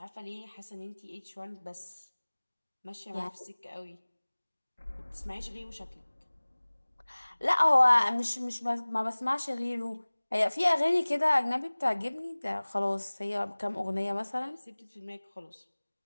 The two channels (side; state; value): both; inverted; correlation -1.00